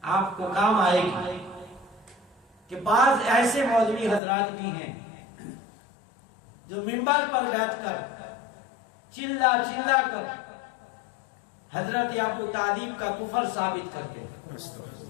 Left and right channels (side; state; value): right; drops out; at 4.2 s